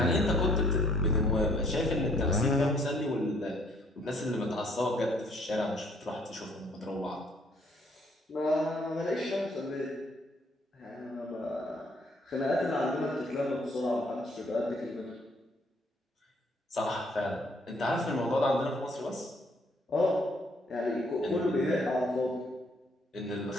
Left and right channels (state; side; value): normal; both; correlation 0.64